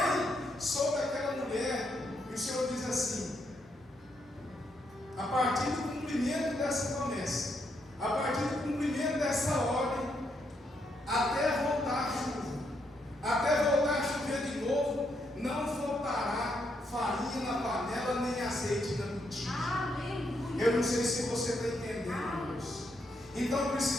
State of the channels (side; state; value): both; normal; correlation 0.78